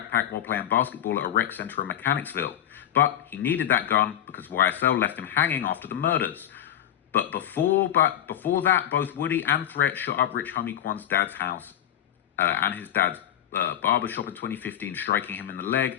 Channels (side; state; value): right; quieter; 11.1 dB